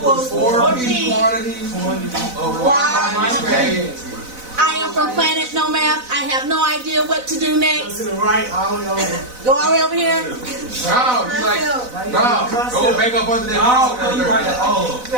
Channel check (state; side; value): late; left; 4.0 ms